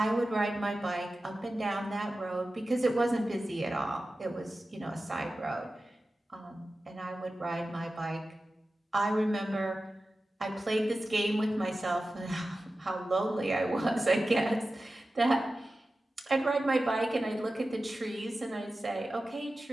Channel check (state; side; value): normal; both; correlation 0.94